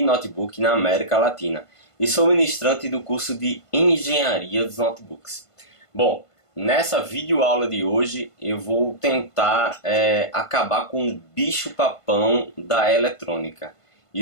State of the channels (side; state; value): right; late; 1.5 ms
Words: notebook na América Latina e sou ministrante do curso de Engenharia dos Notebooks. Bom, nessa videoaula de hoje eu vou tentar acabar com o bicho-papão da eletrônica.